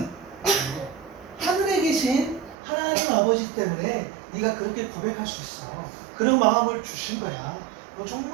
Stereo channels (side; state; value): left; drops out; at 2.6 s